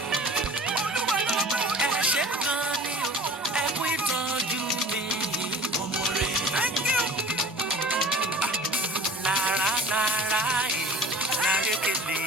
Ẹ ṣé gan ni o, ẹ kú ìtọ́jú mi. Mo mọ̀re. Lára lára ẹ̀ lárékèlè.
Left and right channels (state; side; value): normal; both; correlation 0.44